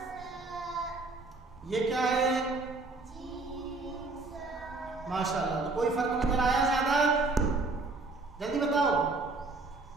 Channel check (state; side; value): quieter; left; 3.5 dB